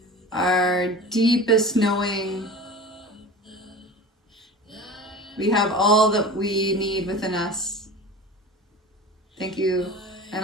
our deepest knowing. We have all that we need within us. Thank you,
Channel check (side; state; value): both; normal; correlation 0.36